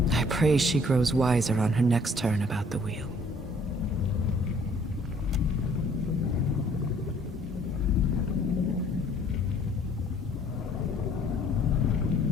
I pray she grows wiser on her next turn about the wheel.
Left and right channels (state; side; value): normal; both; correlation 0.59